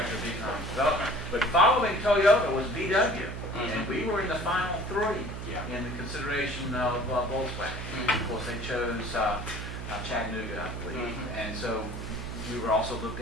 of Economic Development. But following Toyota was VW. And we were in the final three in the consideration of Volkswagen. Of course, they chose Chattanooga, I believe. And so we were also looked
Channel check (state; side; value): noise; right; hum, 7 dB below the sound